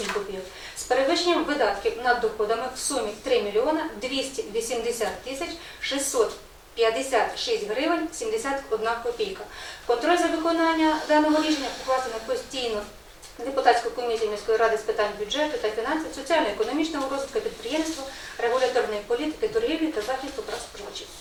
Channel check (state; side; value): identical; both; correlation 1.00